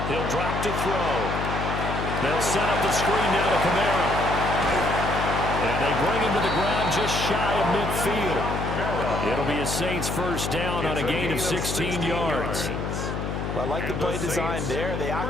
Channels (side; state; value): left; noise; hum, 3 dB below the sound